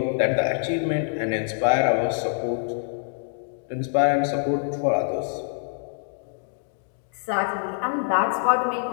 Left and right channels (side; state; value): right; silent; digital silence